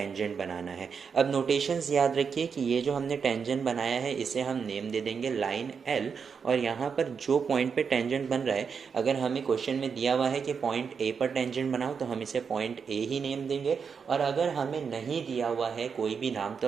बनाना है। अब नोटेशंस याद रखिए कि ये जो हमने टेंजेंट बनाया है इसे हम नेम दे देंगे लाइन L, और यहाँ पर जो पॉइंट पे टेंजेंट बन रहा है, अगर हमें क्वेश्चन में दिया हुआ है कि पॉइंट A पर टेंजेंट बनाओ तो हम इसे पॉइंट A ही नेम देंगे। और अगर हमें नहीं दिया हुआ है कोई भी नाम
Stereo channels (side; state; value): left; quieter; 6.2 dB